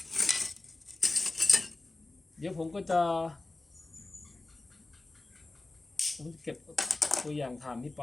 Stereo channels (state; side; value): quieter; right; 3.1 dB